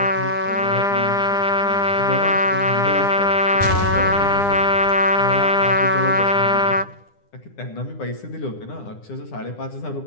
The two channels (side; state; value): right; late; 9.9 ms